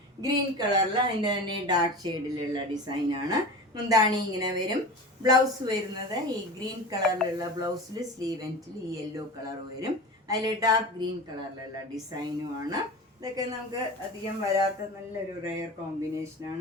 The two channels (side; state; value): both; normal; correlation 0.32